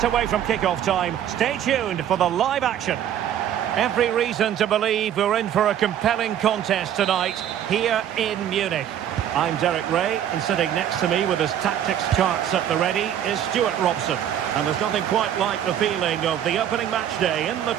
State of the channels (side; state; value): left; quieter; 10.3 dB